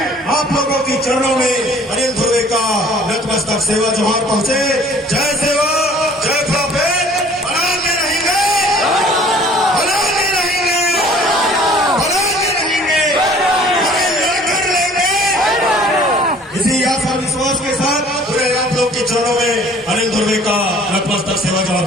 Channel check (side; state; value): both; normal; correlation 0.52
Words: आप लोगों की चरणों में अनिल ध्रुवे का नतमस्तक सेवा जोहार पहुंचे। जय सेवा, जय प्रोफेट, बनाते रहेंगे, बनाते रहेंगे, बनाते रहेंगे, हमें लड़कर लेंगे। इसी आस और विश्वास के साथ पूरे आप लोग के चरणों में अनिल ध्रुवे का नतमस्तक सेवा जोहार